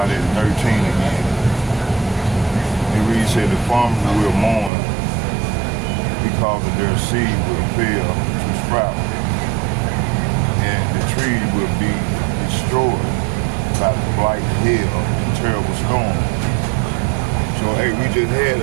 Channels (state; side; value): drops out; left; at 4.7 s